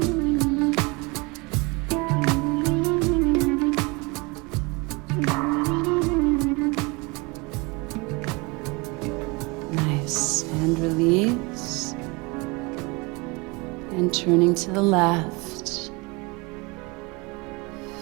Nice. And release. And turning to the left.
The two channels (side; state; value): left; quieter; 27.1 dB